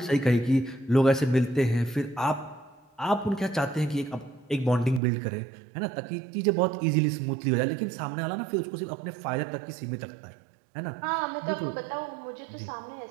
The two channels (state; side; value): drops out; left; at 5.0 s